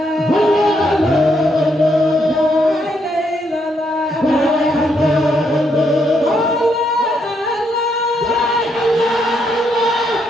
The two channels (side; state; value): both; normal; correlation 0.76